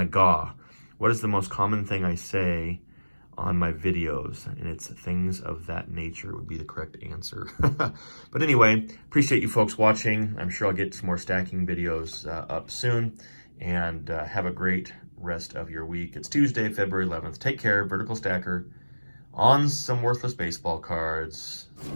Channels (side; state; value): both; inverted; correlation -1.00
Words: GAW. What is the most common thing I say on my videos? And it's things of that nature would be the correct answer. But anyway, appreciate you folks watching. I'm sure I'll get some more stacking videos up soon. And have a great rest of your week. It's Tuesday, February 11th. Take care, Vertical Stacker. On some worthless baseball cards.